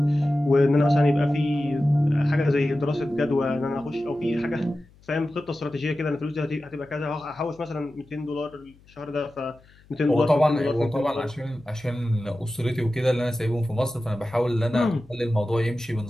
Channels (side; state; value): left; noise; hum, 28 dB below the sound